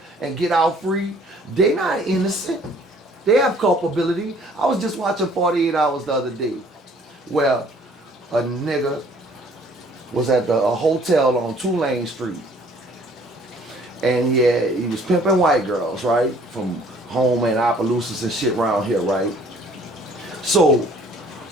and get out free. They not innocent. They have culpability. I was just watching 48 Hours the other day where a nigga was at a hotel on Tulane Street. And yeah, he was pimping white girls, right? From home and Opelousas and shit around here, right? So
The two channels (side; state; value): both; normal; correlation 0.57